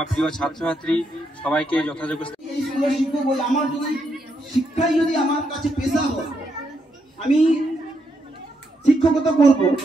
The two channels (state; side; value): normal; both; correlation 0.79